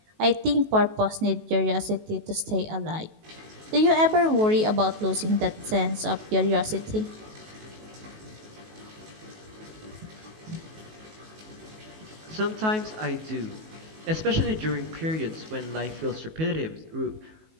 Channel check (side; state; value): left; late; 19 ms